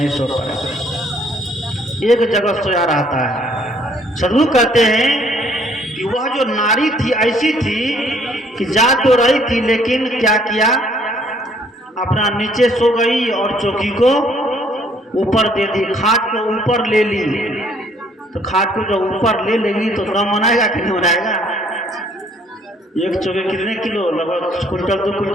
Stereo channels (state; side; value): normal; both; correlation 0.62